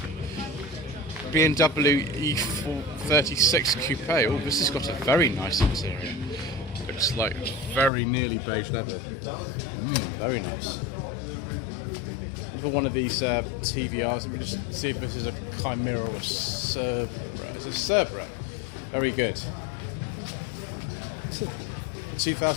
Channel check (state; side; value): drops out; right; at 7.9 s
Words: BMW E36 Coupe. Oh, this has got a very nice interior. Looks like very nearly beige leather. Very nice. Another one of these TVRs. Let me just see if this is a Chimera or a Cerbera. It's a Cerbera. Very good. It's a